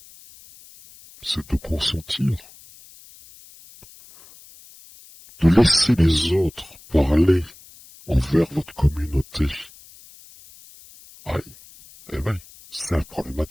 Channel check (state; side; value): noise; left; hiss, 23 dB below the sound